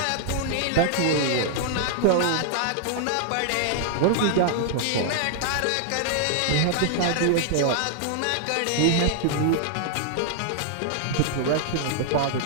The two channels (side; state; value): both; different; correlation -0.01